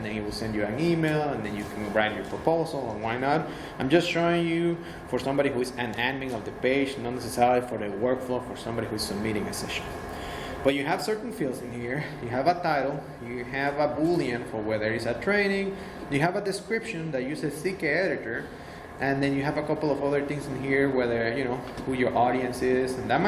then it will send you an email, and then you can write your proposal, and why not. I'm just showing you for somebody who is an admin of the page, not necessarily for the workflow for somebody who is submitting a session. But you have certain fields in here. You have a title, you have a boolean for whether it's a training, you have a description that uses CK editor, and then you have a couple of other things in here, whether, you know, who your audience is, and that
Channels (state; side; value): identical; both; correlation 1.00